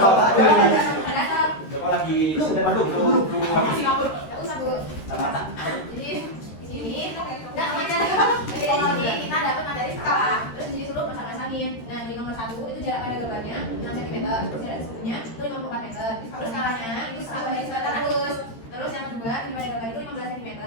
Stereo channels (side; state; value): right; late; 13 ms